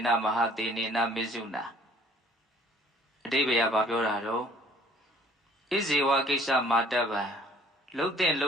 နမဟာတေနေနမေစုနာအတိပ္ပယ်ကပြောတာတော့ဣဇေဝကိစ္စမာတဗံလှုပ်တဲ့လှု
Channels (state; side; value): normal; both; correlation 0.57